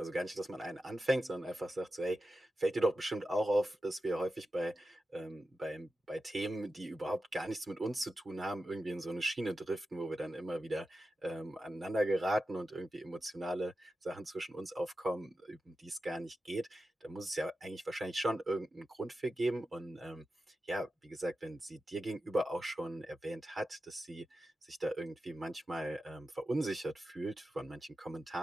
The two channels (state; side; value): normal; both; correlation 0.92